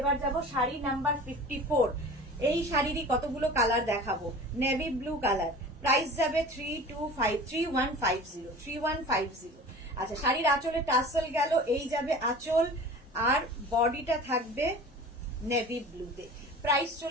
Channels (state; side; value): normal; both; correlation 0.39